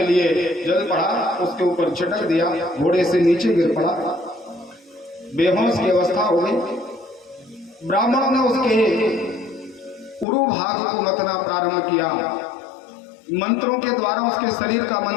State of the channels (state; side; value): drops out; right; at 10.2 s